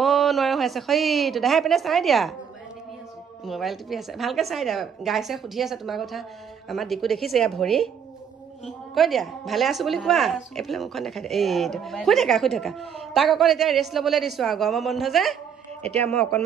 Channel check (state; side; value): quieter; left; 7.6 dB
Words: নোৱাৰা হৈ আছে সেইটো দেহাই পিনে চাই দিয়া মোবাইল টিপি আছে ভালকৈ চাই দিয়া গাইছে সুধি আছে তোমাৰ কথা আমাৰ ডিকু দেখিছে এয়া ভৰি কৈ দিয়া ভালে আছো বুলি কোৱা এইফালে মুখখন দেখাই দিয়া এইটো শুই থাকা তাক অকণ এতিয়া ৰেষ্ট ল'বলৈ দিছোঁ আৰু গৰম বন্ধ যে এতিয়া মই